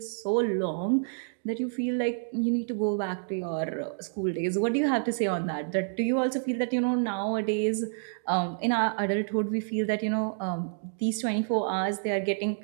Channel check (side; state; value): left; silent; digital silence